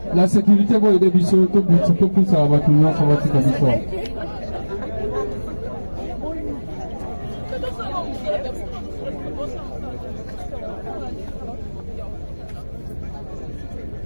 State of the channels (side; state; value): both; inverted; correlation -1.00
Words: La sécurité va aider Bissot, tout le plus ça va tout le monde, ça va tout le monde.